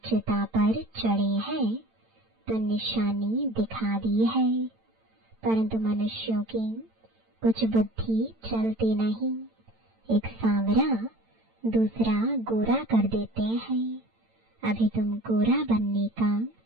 चिता पर चढ़े हैं तो निशानी दिखा दी है, परंतु मनुष्यों की कुछ बुद्धि चलती नहीं। एक सांवरा दूसरा गोरा कर देते हैं। अभी तुम गोरा बनने का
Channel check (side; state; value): left; late; 8.9 ms